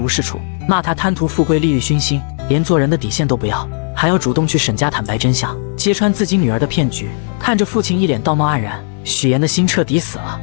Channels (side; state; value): right; silent; digital silence